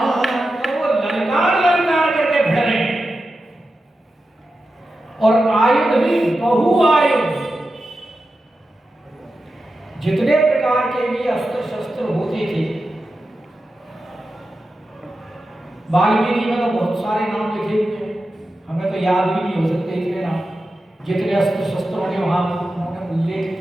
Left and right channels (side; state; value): both; normal; correlation 0.91